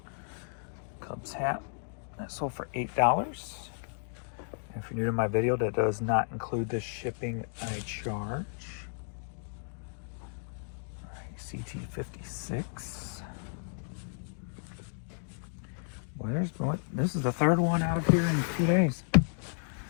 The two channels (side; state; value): right; silent; digital silence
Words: Cubs hat. That sold for $8. And if you're new to my video, that does not include the shipping I charge. All right, CT56. Well, this is the third one out of here in 2 days.